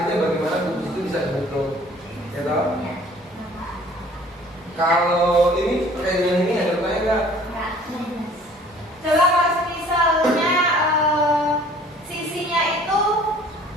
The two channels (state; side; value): normal; both; correlation 0.52